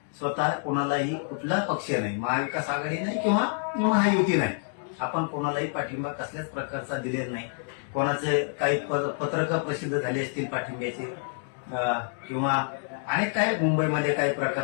स्वतः कोणालाही कुठला पक्ष नाही, महाविकास आघाडी नाही किंवा महायुती नाही, आपण कोणालाही पाठिंबा कसल्याच प्रकारचा दिलेला नाही. कोणाचे काही पत्रकं प्रसिद्ध झाले असतील पाठिंब्याचे किंवा अनेक काही मुंबईमध्ये काही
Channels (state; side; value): silent; right; 60 dB below the other